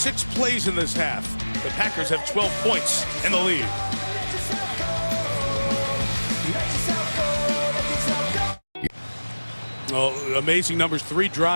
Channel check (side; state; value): both; inverted; correlation -1.00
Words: plays in this half. The Packers have 12 points in the lead. Well, amazing numbers, 3